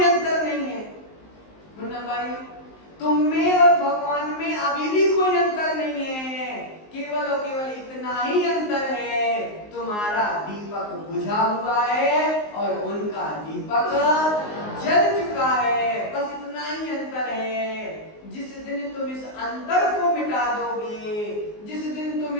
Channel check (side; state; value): right; late; 19 ms